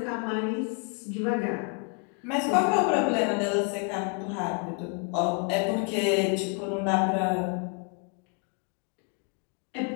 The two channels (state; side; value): quieter; right; 37.2 dB